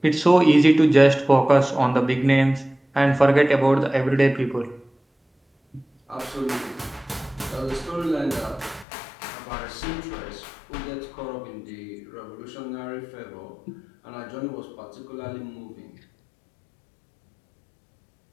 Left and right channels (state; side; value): drops out; right; at 8.8 s